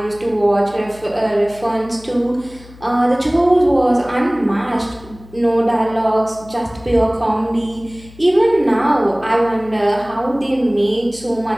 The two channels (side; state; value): left; noise; hum, 21 dB below the sound